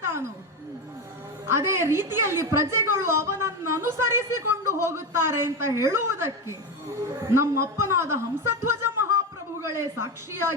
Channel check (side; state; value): both; normal; correlation 0.16